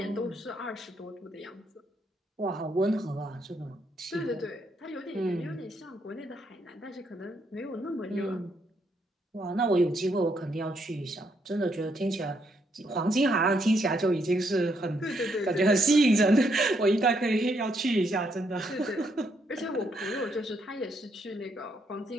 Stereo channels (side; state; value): both; normal; correlation 0.75